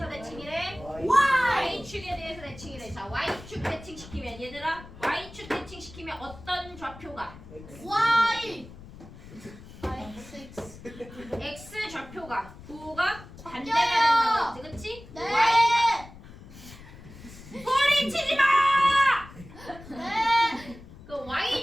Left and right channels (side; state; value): left; noise; rumble, 17 dB below the sound